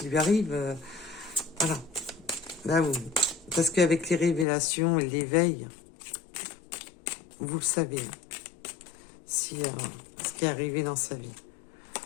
lui arrive. Voilà. Là, parce qu'avec les révélations et l'éveil, vous le savez, si, ce qui est arrivé dans sa vie.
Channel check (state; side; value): drops out; right; at 4.5 s